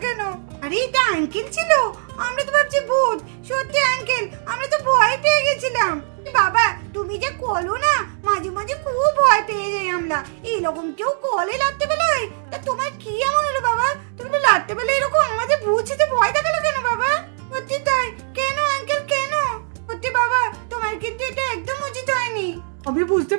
কেন? আরে এটা আঙ্কেল ছিল, আমরা তো ভাবছি ভূত। সত্যি আঙ্কেল, আমরা তো ভয় পেয়ে গেছিলাম। বাবা তুমি যে কলো না, মাঝে মাঝে খুব ভয় পেয়ে যাই আমরা। এইরকম কেউ কলে রাত্রে বেলায়? তা তোমার কি এমন হলো বাবা? তুমি রাত্রে বেলায় এরকম আমাদের ভূত সেজে ভয় দেখালো কেন বাবা? সত্যি তাই, কেন আঙ্কেল কেন? সত্যি বাবা, তোমার কিন্তু এটা একদম উচিত হয়নি। আমি বুঝতে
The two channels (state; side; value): silent; left; digital silence